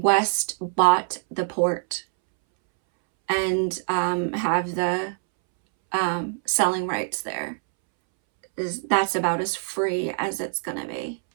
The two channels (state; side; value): silent; left; 62 dB below the other